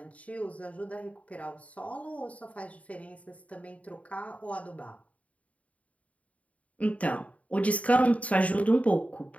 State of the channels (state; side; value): late; right; 0.068 ms